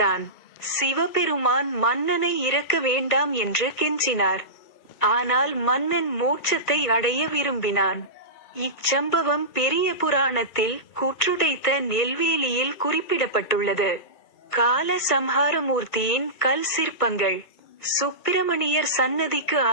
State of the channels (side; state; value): right; late; 1.5 ms